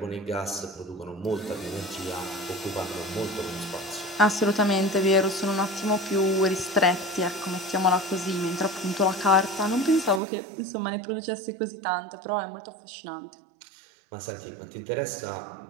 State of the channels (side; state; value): left; drops out; at 10.2 s